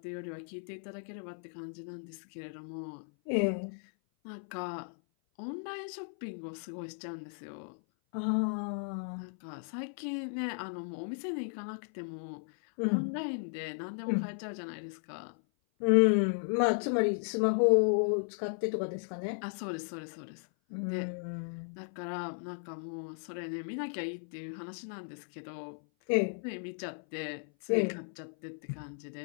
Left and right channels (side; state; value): right; silent; 54 dB below the other